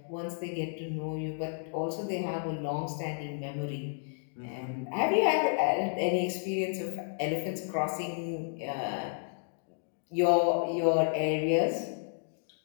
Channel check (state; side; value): silent; right; digital silence